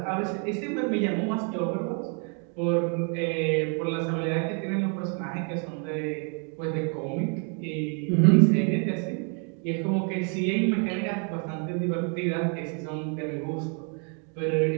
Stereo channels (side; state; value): left; quieter; 39.5 dB